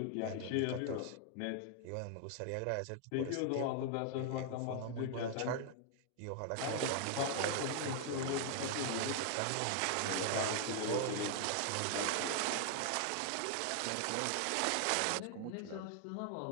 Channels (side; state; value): both; different; correlation 0.00